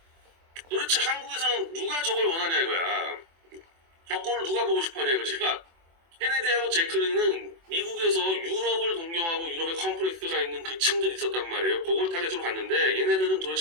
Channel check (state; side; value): late; left; 24 ms